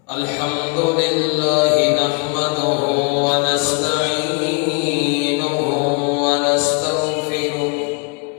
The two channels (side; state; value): right; quieter; 32.5 dB